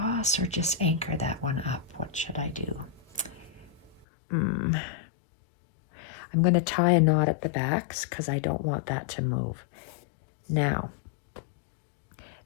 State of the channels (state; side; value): drops out; right; at 4.0 s